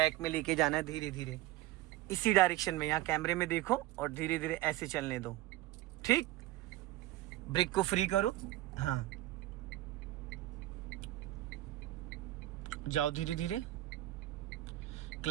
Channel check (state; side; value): quieter; left; 16.6 dB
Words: में लेके जाना है धीरे धीरे, इसी डायरेक्शन में। यहाँ कैमरे में देखो और धीरे धीरे ऐसे चलने दो। ठीक, ब्रेक को फ्री करो। हाँ, जाओ धीरे धीरे,